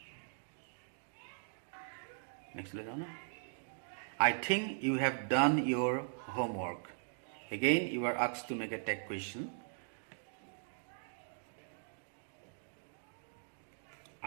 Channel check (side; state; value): left; silent; digital silence